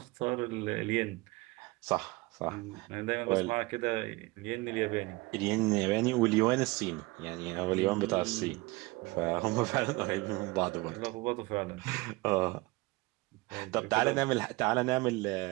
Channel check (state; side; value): quieter; left; 23.1 dB